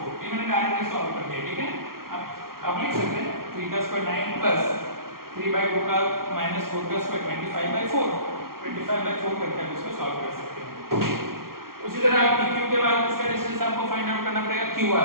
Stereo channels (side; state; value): left; late; 0.93 ms